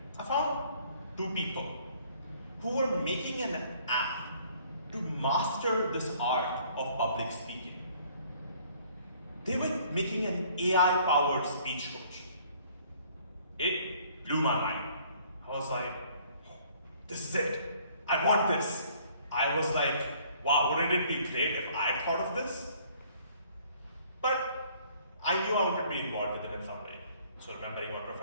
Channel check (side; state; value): both; inverted; correlation -0.59